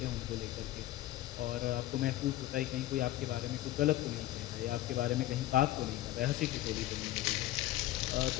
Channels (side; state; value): right; quieter; 15.1 dB